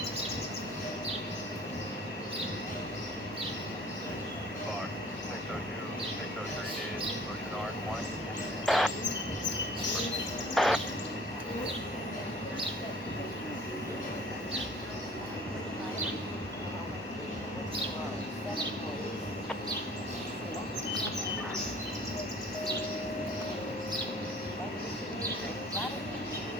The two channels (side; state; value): both; normal; correlation 0.50